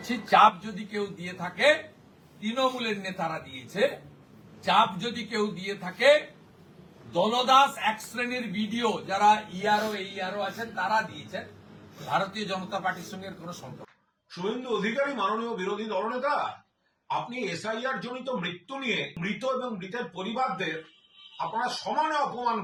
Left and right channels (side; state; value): both; identical; correlation 1.00